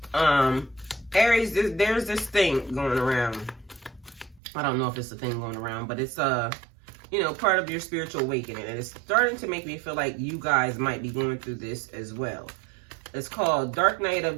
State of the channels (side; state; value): left; drops out; at 4.4 s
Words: Aries, there's this thing going around. I don't know if it's a thing going around, but it's you know, part of your spiritual awakening. And it's starting to make me feel like you guys might be going through this as well. It's called Dark Night